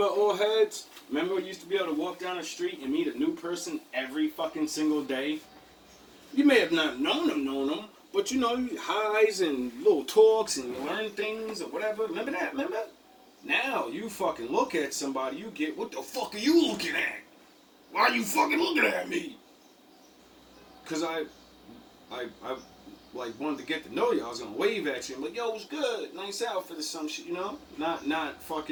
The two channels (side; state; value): both; identical; correlation 1.00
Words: old heads? Remember you used to be able to walk down the street and meet a new person every fucking single day? You may have not known them, but you highs and little talks and you learn things or whatever. Remember that? Remember? Now you fucking look at somebody, you get, what the fuck are you looking at? Why are you fucking looking at me? Because I like wanted to get to know you, I was gonna wave at you and be like, yo, what's good? Nice outfit or some shit, you know? Not